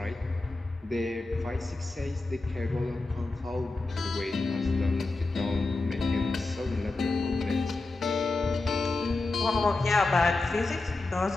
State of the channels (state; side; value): quieter; right; 3.3 dB